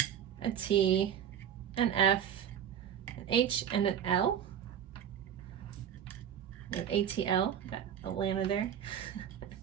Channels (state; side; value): quieter; left; 9.3 dB